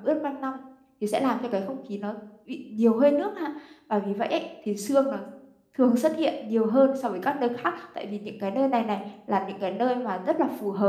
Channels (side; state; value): both; identical; correlation 1.00